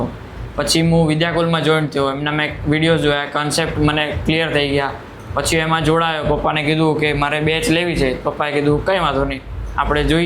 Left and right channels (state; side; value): identical; both; correlation 1.00